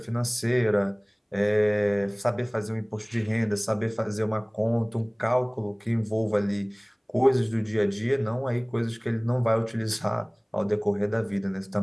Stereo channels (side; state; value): both; identical; correlation 1.00